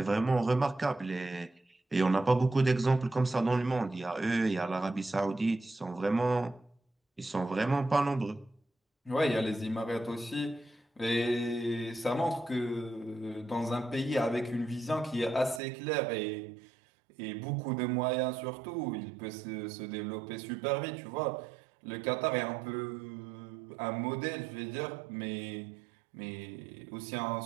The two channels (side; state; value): left; drops out; at 15.6 s